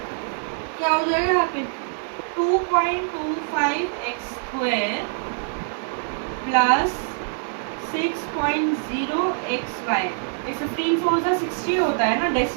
क्या हो जाएगा यहाँ पे 2.25x स्क्वायर प्लस 6.0xy। ये 15 4 सा 60 होता है ना,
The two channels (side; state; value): left; silent; digital silence